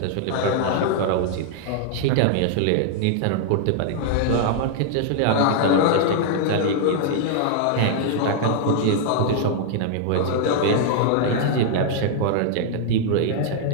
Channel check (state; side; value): different; both; correlation -0.01